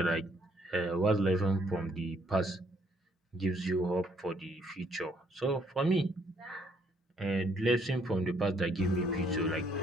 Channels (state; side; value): normal; both; correlation 0.67